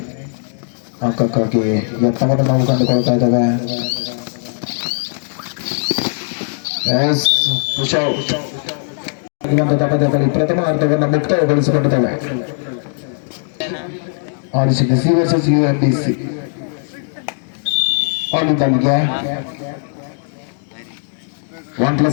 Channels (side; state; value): right; silent; 67 dB below the other